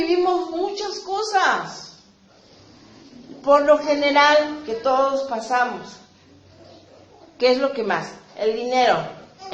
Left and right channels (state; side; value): identical; both; correlation 1.00